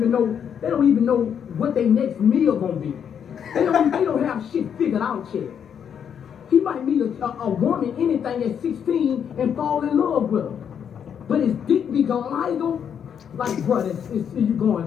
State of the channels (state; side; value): quieter; right; 8.1 dB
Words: know what their next meal gonna be. They don't have shit figured out yet. He might meet a woman, anything at 16, and fall in love with her. But his dick be gone. How you gonna? Like, bro, you